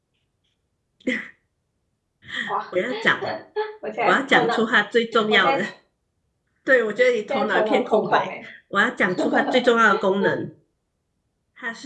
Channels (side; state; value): both; identical; correlation 1.00